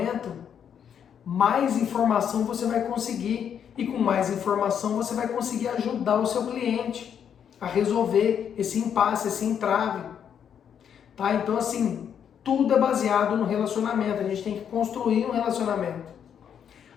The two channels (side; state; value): right; quieter; 8.3 dB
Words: mais informação você vai conseguir. E com mais informação você vai conseguir ajudar o seu cliente a resolver esse impasse, esse entrave. Tá? Então assim, tudo é baseado no relacionamento. A gente tem que construir um relacionamento.